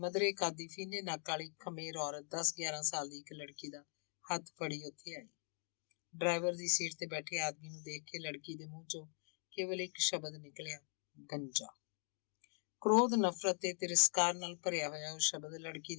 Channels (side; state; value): right; silent; 50 dB below the other